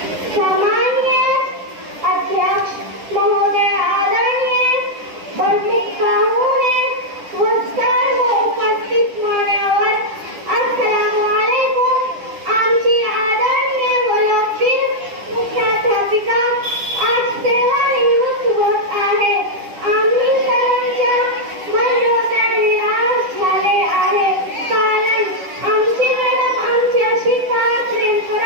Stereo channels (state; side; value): late; left; 10 ms